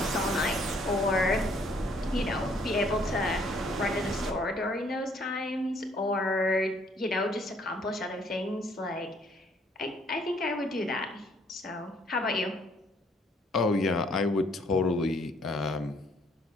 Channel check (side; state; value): both; normal; correlation 0.64